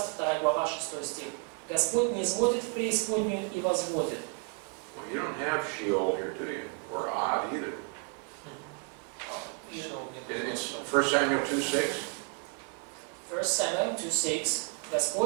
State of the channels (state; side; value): quieter; left; 36.3 dB